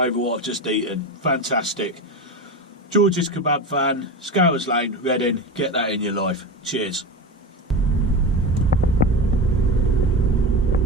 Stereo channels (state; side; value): normal; both; correlation 0.24